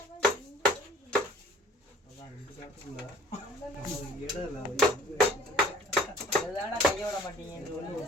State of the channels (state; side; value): normal; both; correlation 0.50